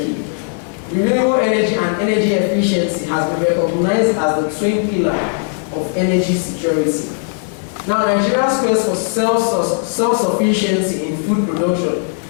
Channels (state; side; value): silent; right; 60 dB below the other